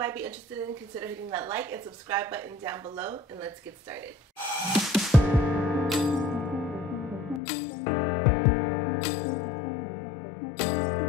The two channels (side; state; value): right; drops out; at 7.4 s